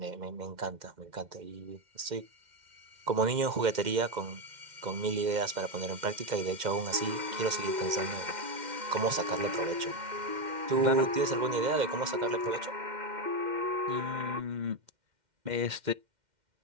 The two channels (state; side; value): late; left; 2.1 ms